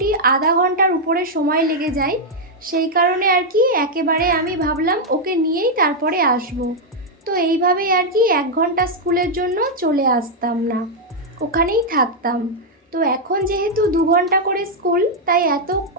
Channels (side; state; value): both; normal; correlation -0.02